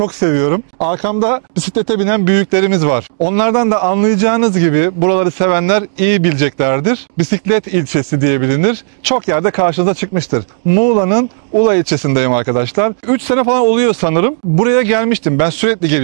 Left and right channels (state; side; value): silent; left; digital silence